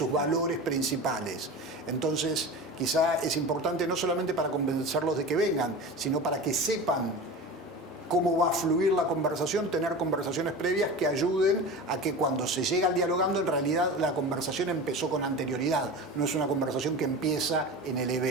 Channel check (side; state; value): both; normal; correlation 0.31